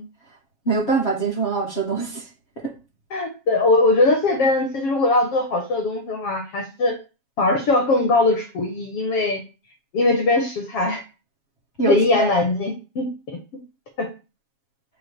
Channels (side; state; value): right; late; 7.3 ms